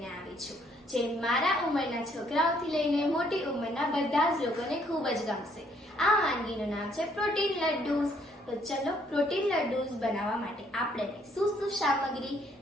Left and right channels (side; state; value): both; normal; correlation 0.67